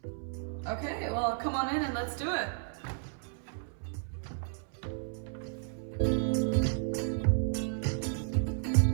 Okay, well, come on in and let's do it.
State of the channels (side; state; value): left; silent; 56 dB below the other